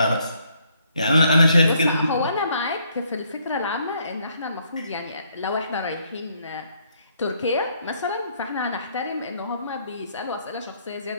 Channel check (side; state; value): both; inverted; correlation -0.69